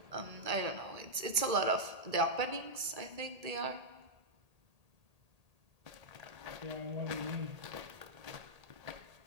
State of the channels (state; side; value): late; left; 1.8 ms